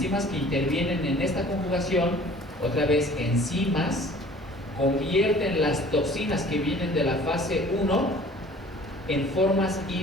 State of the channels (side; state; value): both; normal; correlation 0.49